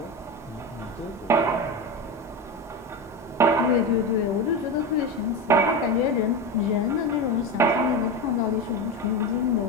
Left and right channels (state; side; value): normal; both; correlation 0.20